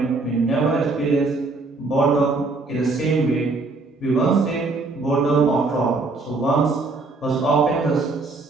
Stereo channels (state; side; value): quieter; left; 3.6 dB